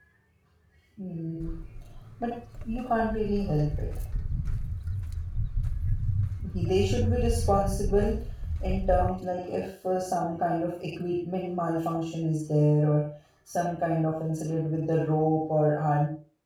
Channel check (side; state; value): both; identical; correlation 1.00